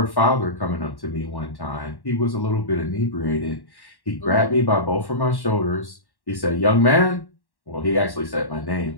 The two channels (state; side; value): late; right; 1.1 ms